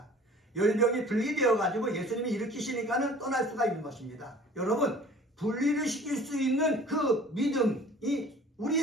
열병이 분리되어 가지고 예수님이 일으키시니까는 떠날 수가 있는 것입니다. 여러분, 분리를 시킬 수 있는 그 믿음이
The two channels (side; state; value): both; normal; correlation 0.48